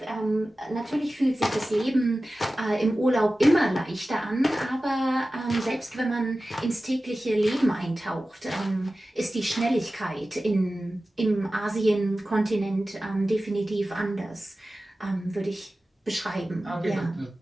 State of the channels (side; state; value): both; normal; correlation 0.95